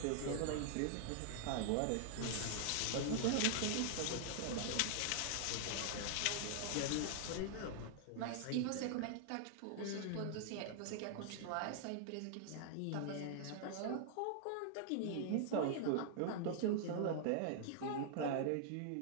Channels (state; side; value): different; both; correlation -0.01